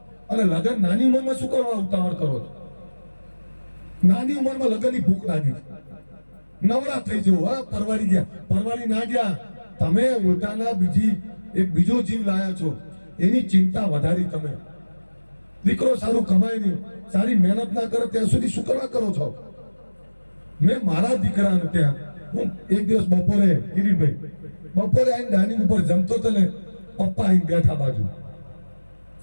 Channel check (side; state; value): both; inverted; correlation -1.00